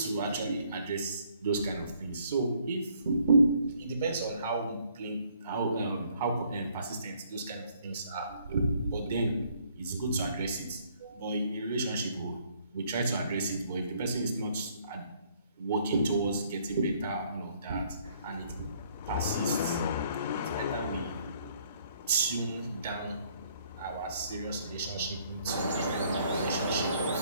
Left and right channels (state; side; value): inverted; both; correlation -0.65